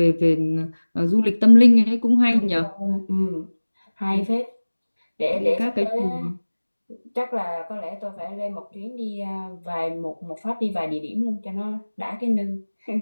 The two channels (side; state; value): both; inverted; correlation -1.00